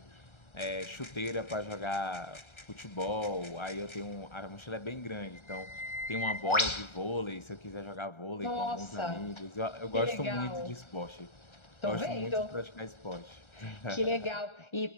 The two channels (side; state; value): right; late; 1.3 ms